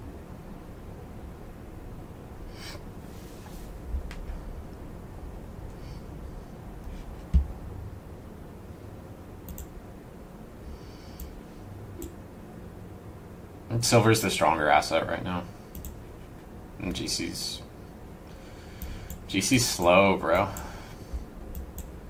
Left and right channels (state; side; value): identical; both; correlation 1.00